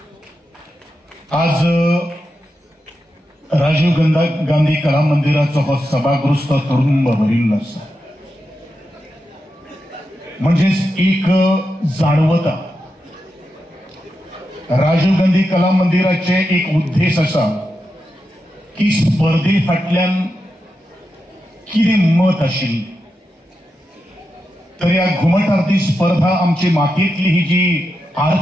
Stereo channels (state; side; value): normal; both; correlation 0.88